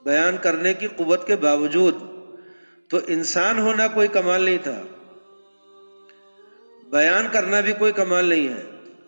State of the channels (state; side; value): inverted; both; correlation -1.00